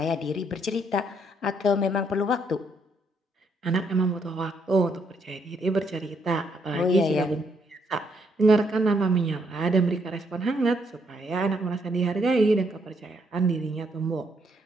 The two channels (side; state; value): both; normal; correlation 0.73